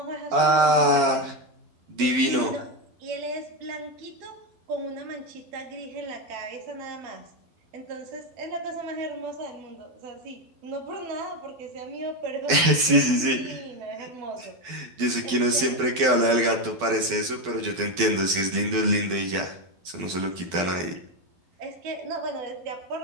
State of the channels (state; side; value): late; left; 12 ms